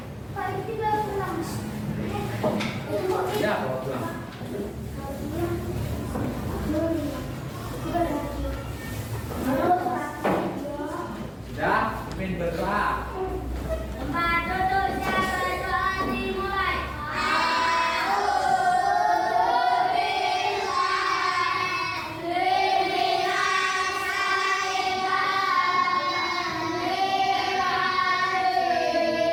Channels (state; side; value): identical; both; correlation 1.00